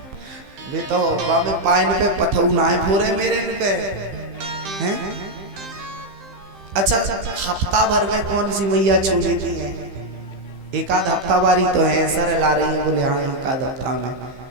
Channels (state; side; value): late; left; 15 ms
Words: वे तो बाबे पाइन पे पथऊ ना है पूरे मेरे पे हैं। अच्छा हफ्ता भर में कौन सी मैया छू लेती है? एक आध हफ्ता बारी तो है, सर ला रही है बोले हाँ एक आध हफ्ता में।